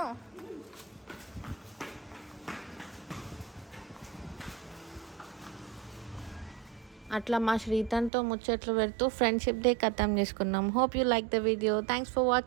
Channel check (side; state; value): left; drops out; at 8.1 s